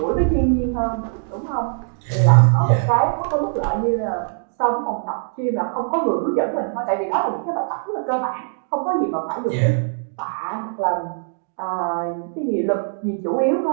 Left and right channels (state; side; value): silent; left; digital silence